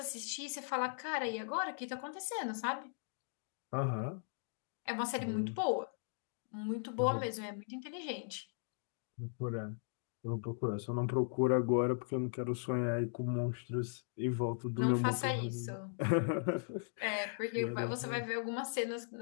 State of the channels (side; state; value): right; silent; digital silence